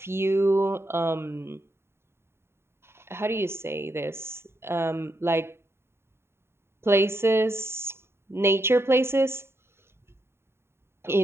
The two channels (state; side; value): late; left; 0.12 ms